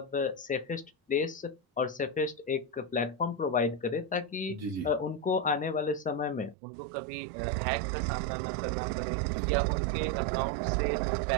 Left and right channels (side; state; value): left; drops out; at 6.6 s